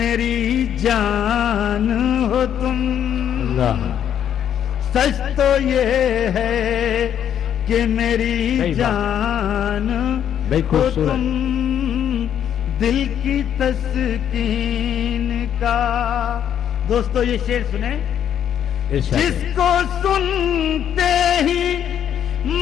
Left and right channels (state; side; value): quieter; right; 9.5 dB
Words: جان ہو تم. اللہ. سچ تو یہ ہے کہ میری جان ہو تم. دل کی تسکین کا. دوستو یہ شعر سنیں. جس کو سنتے ہی